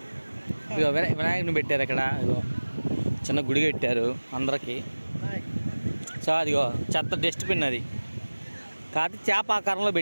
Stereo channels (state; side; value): inverted; both; correlation -1.00